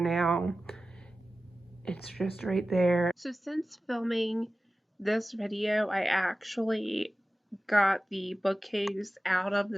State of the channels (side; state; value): both; normal; correlation 0.95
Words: it's just right there. So since filming this video, I actually got the bookcase out of